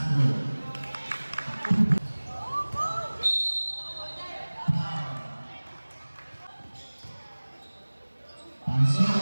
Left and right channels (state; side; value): inverted; both; correlation -1.00